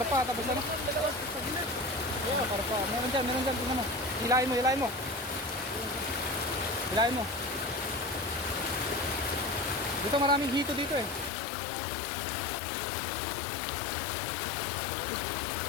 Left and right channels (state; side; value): drops out; right; at 11.3 s